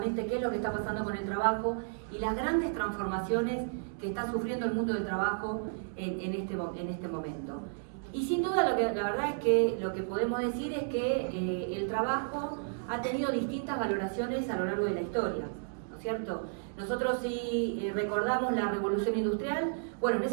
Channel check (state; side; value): silent; left; digital silence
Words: qué es lo que está pasando con el trabajo y las grandes transformaciones que está sufriendo el mundo del trabajo en este momento. Y sin duda, la verdad es que lo que podemos decir es que el trabajo ha tenido distintas valoraciones a lo largo de la historia, ¿no es cierto? Nosotros si recordamos la revolución industrial, bueno, en